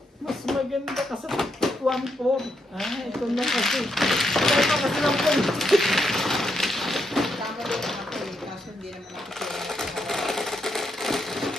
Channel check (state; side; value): normal; both; correlation 0.80